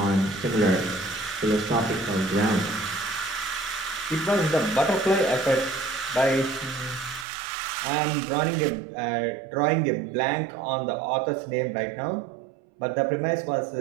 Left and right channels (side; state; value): left; drops out; at 7.2 s